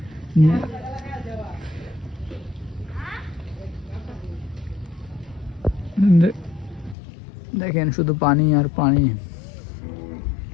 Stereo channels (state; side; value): drops out; right; at 7.0 s